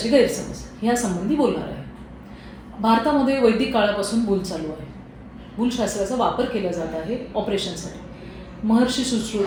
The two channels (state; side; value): identical; both; correlation 1.00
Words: गैरसमज ह्यासंबंधी बोलणार आहे. भारतामध्ये वैदिक काळापासून भूल चालू आहे. भूलशास्त्राचा वापर केला जात आहे ऑपरेशनसाठी. महर्षी